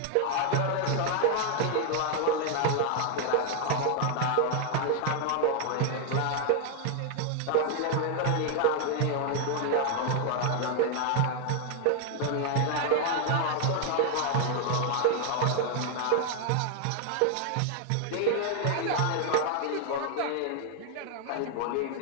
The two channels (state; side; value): different; both; correlation 0.00